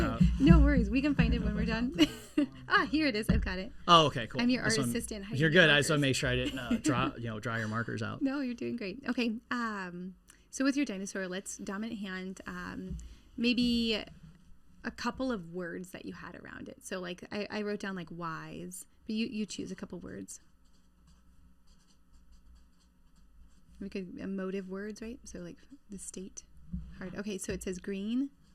out. No worries. We can find it when we're done. Here it is. I've got it. Oh, okay, cool. I'm your art assistant. You're good. I just want to make sure I didn't dry your markers out. No, you're doing great. Okay. So with your dinosaur, let's dominant hand, maybe a couple of words that you had around it. So like I wrote down like wise, but you choose a couple words. We could emotive words, right? So like the state. Hard. Okay, so it says green.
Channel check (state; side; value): identical; both; correlation 1.00